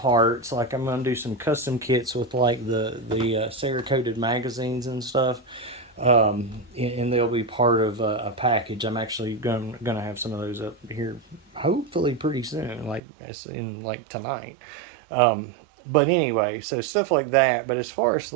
like I'm gonna do some custom kits with the Cerakoted magazines and stuff. And they'll be part of a package. I'm actually gonna have some of those up here, hopefully pretty soon, as in tonight. But anyway, so stuff like that. But as far as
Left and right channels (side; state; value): left; drops out; at 13.0 s